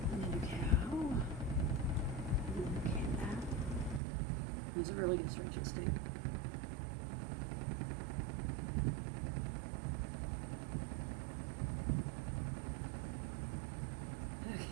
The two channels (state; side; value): drops out; left; at 4.0 s